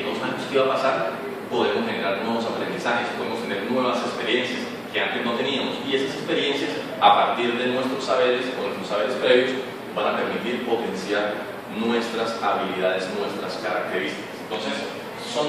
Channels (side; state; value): both; identical; correlation 1.00